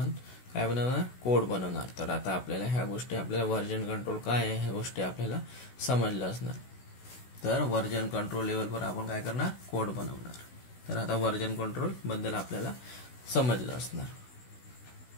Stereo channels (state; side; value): late; right; 16 ms